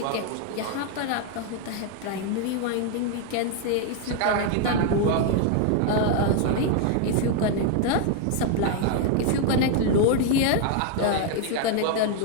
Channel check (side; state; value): both; different; correlation 0.00